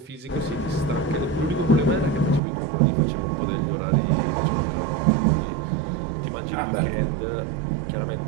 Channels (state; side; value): drops out; left; at 2.4 s